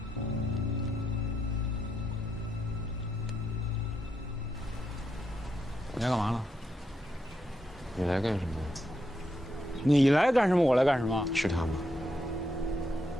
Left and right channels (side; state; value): both; normal; correlation 0.82